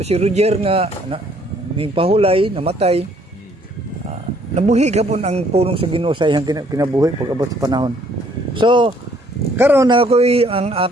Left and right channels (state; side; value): normal; both; correlation 0.64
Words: si Roger nga ning pahulay, namatay. Nabuhi gapon ang pulong sa Ginoo sa iyang kinabuhi pag abot sa panahon. So karon na ako'y ang